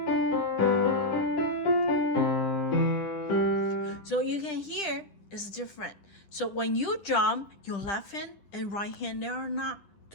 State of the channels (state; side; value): late; right; 9.9 ms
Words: So you can hear it's different. So when you jump, your left hand and right hand, they are not